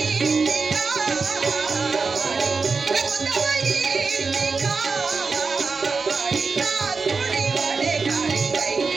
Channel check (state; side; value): quieter; left; 4.6 dB